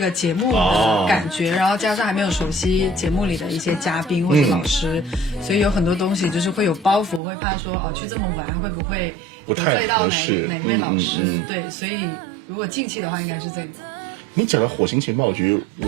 节目的感觉，然后加上还没有熟悉节目里的一些嘉宾或者老师，所以有很多东西就是会有包袱，会怕说去这么玩会不会得罪到哪位老师。对，所以如果近期的话应该是这个。你讲到火星情报局，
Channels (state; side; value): drops out; left; at 7.2 s